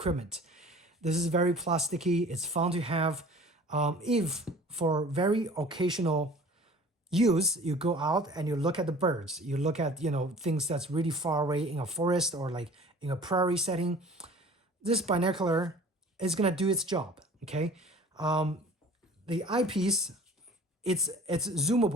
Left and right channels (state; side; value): normal; both; correlation 0.46